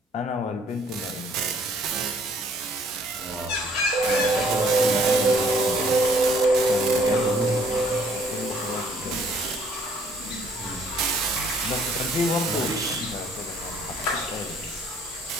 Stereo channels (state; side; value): normal; both; correlation 0.61